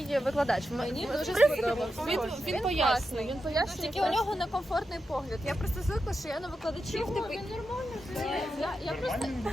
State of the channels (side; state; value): both; normal; correlation 0.88